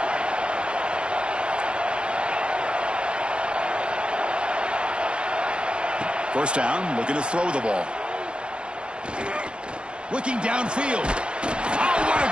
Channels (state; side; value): late; left; 0.054 ms